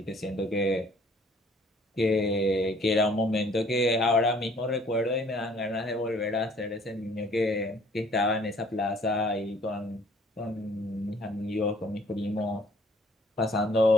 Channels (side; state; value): both; normal; correlation 0.58